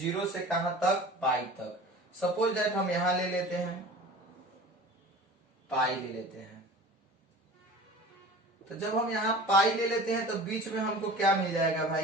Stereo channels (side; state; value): both; normal; correlation 0.39